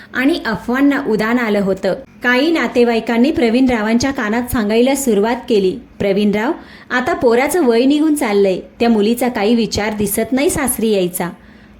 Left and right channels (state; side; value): identical; both; correlation 1.00